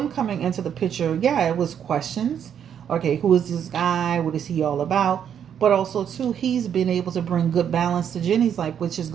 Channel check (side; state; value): left; quieter; 8.7 dB